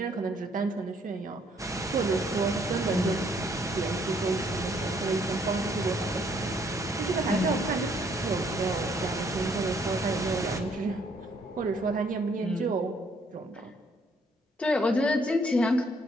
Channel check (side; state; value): both; normal; correlation 0.66